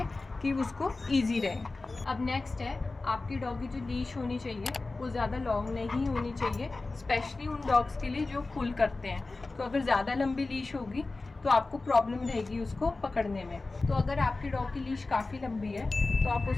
कि उसको ईजी रहे। अब नेक्स्ट है, आपकी डॉग की जो लीश होनी चाहिए वो ज़्यादा लॉन्ग नहीं होनी चाहिए, स्पेशली उन डॉग्स के लिए जो पुल करते हैं। तो अगर ज़्यादा लंबी लीश होगी तो आपको प्रॉब्लम रहेगी उसको पकड़ने में। तो अगर आपकी डॉग की लीश काफ़ी लंबी है तो आप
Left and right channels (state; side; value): quieter; right; 3.4 dB